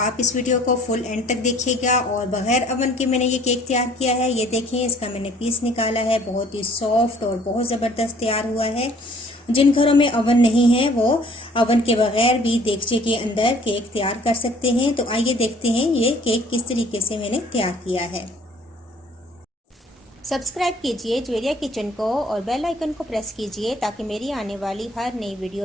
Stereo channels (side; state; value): both; normal; correlation 0.56